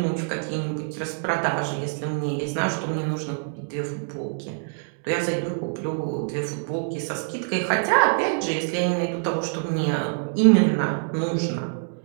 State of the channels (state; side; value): silent; left; digital silence